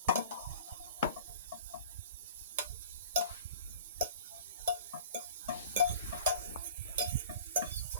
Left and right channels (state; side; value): inverted; both; correlation -0.44